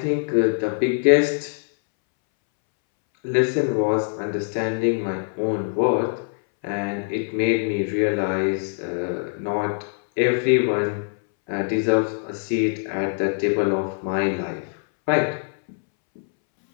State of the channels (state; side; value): silent; right; 63 dB below the other